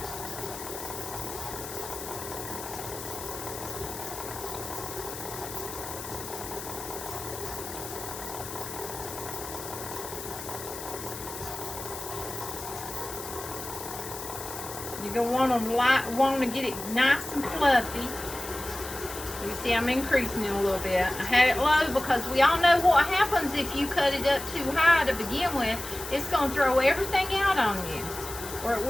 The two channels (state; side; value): noise; left; hiss, 10 dB below the sound